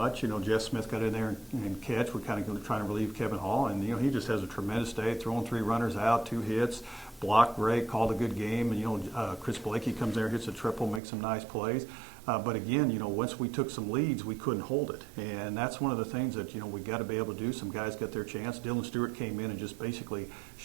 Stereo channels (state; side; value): drops out; left; at 11.0 s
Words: You know, Jeff Smith got in there and catch. We're kind of trying to relieve Kevin Hall, and you know, he just has a tremendous day, throwing 3 runners out, 2 hits, blocked great, called a good game. And you know, Chris Blakey comes there, hits a triple, makes some nice plays. But again, you know, once we took some leads, we couldn't hold it. And that's one of the things that, you know, we got to be able to do. Some guys got their chance. Dylan Stewart came in and just basically